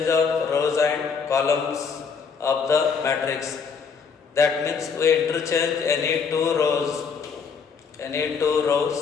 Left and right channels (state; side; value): quieter; right; 5.9 dB